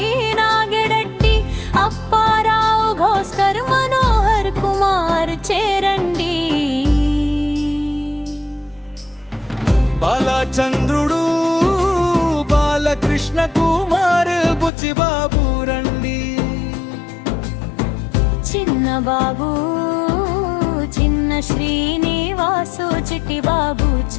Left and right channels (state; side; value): drops out; right; at 14.7 s